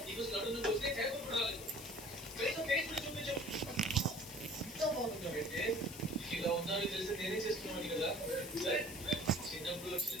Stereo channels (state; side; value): noise; left; hiss, 12 dB below the sound